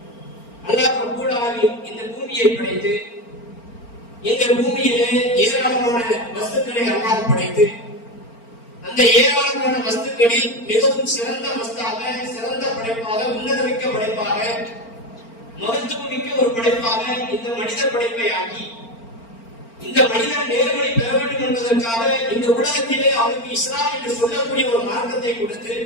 அல்லாஹ் ரப்பல் ஆலமீன் இந்த பூமியை படைத்து இந்த பூமியிலே ஏராளமான வஸ்துக்களை அல்லாஹ் படைத்து அந்த ஏராளமான வஸ்துக்களில் மிகவும் சிறந்த வஸ்தாக, சிறந்த படைப்பாக, உன்னதமிக்க படைப்பாக, மகத்துவமிக்க ஒரு படைப்பாக இந்த மனித படைப்பை ஆக்கி இந்த மனிதன் நேர்வழி பெற வேண்டும் என்பதற்காக இந்த உலகத்திலே அவனுக்கு இஸ்லாம் என்று சொல்லக்கூடிய ஒரு மார்க்கத்தை கொடுத்து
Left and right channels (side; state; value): right; late; 4.4 ms